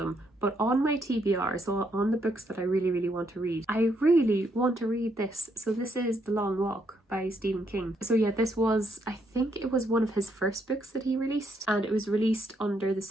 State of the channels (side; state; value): both; normal; correlation 0.75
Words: but on my TBR, so on the books that I really want to read, I really want to read this. So this is The Long Walk by Stephen King. So yeah, this was, I think it was one of his first books that he released, and it was released under the